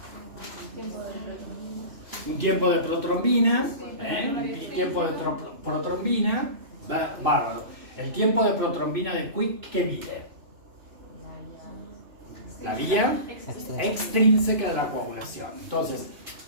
Un tiempo de protrombina. Un tiempo de protrombina. Bárbaro. El tiempo de protrombina de Quick, ¿qué mide? La vía extrínseca de la coagulación. Entonces,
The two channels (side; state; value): left; late; 2.5 ms